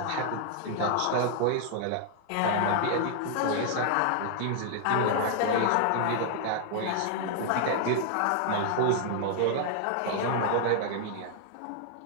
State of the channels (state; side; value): different; both; correlation 0.00